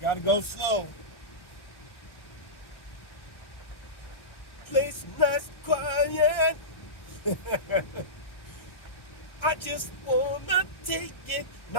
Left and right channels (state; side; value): late; right; 1.1 ms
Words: Gotta go slow. Place nice quiet. I just wanna take it